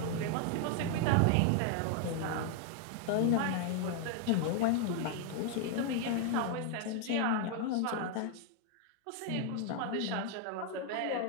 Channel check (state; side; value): different; both; correlation 0.00